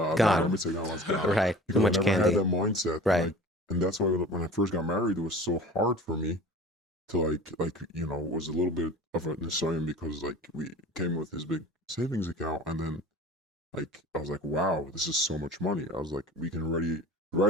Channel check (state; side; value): normal; both; correlation 0.41